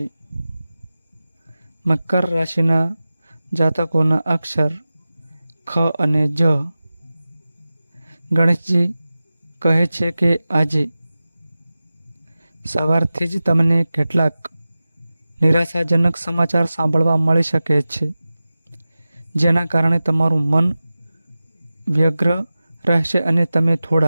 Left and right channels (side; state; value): both; inverted; correlation -0.95